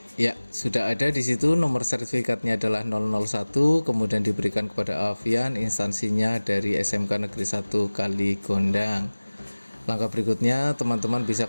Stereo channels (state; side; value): inverted; both; correlation -1.00